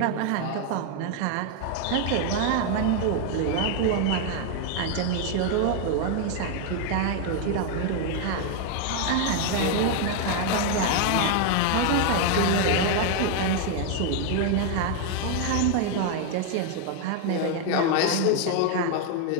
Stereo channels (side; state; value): both; different; correlation 0.01